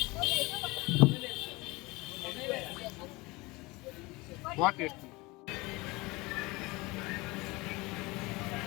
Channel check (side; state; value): right; quieter; 23.4 dB